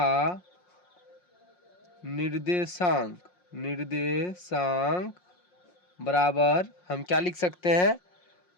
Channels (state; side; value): late; right; 5.6 ms